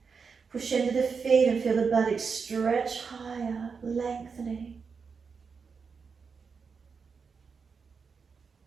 Push into the feet and feel the buttocks stretch higher, lengthening.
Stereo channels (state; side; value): quieter; left; 5.5 dB